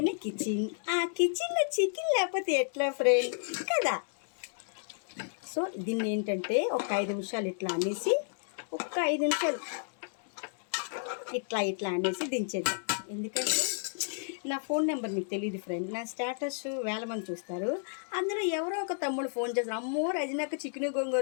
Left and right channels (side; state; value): right; silent; digital silence